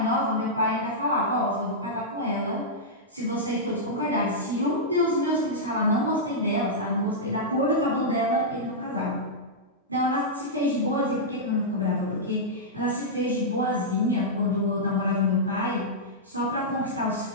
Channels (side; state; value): both; normal; correlation -0.10